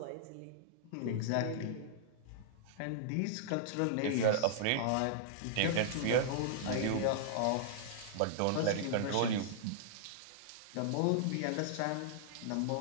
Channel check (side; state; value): both; different; correlation -0.01